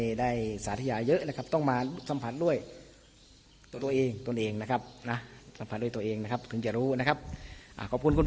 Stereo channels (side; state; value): both; identical; correlation 1.00